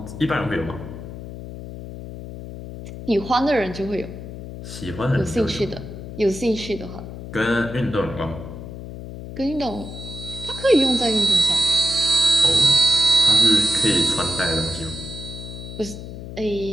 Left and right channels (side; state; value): left; noise; hum, 11 dB below the sound